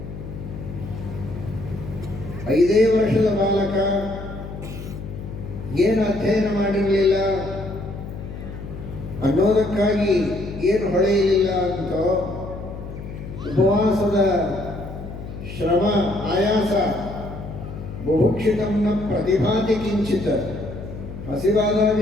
5 ವರ್ಷದ ಬಾಲಕ, ಏನು ಅಧ್ಯಯನ ಮಾಡಿರಲಿಲ್ಲ, ಅನ್ನೋದಕ್ಕಾಗಿ ಏನು ಹೊಳೆಯಲಿಲ್ಲ ಅಂತೋ ಉಪವಾಸದ ಶ್ರಮ ಆಯಾಸ ಬುಭುಕ್ಷಿತಂನ ಪ್ರತಿಭಾತಿ ಕಿಂಚಿತ, ಹಸಿವಾದಾಗ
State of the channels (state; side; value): noise; left; hum, 10 dB below the sound